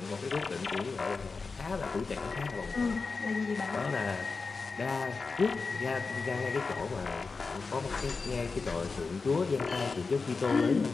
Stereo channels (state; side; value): quieter; right; 4.4 dB